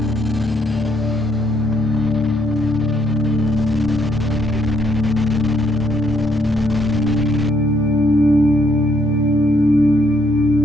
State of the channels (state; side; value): normal; both; correlation 0.70